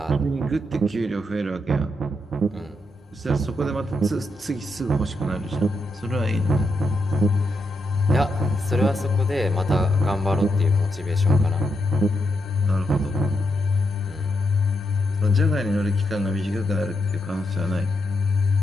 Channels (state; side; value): normal; both; correlation 0.82